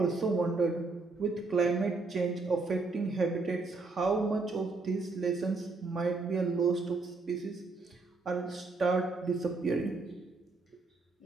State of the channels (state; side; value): quieter; left; 3.7 dB